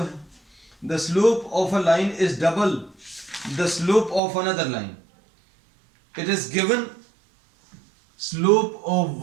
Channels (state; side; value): drops out; left; at 4.2 s